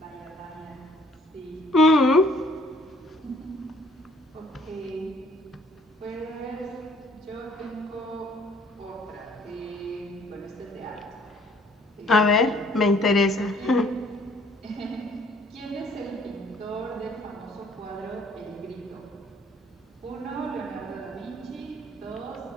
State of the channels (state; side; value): normal; both; correlation 0.59